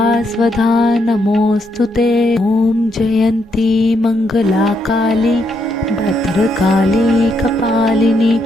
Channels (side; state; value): both; normal; correlation 0.77